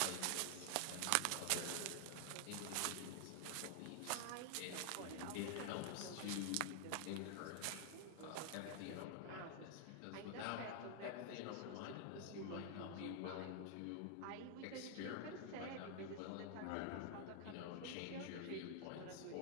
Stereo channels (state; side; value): different; both; correlation 0.00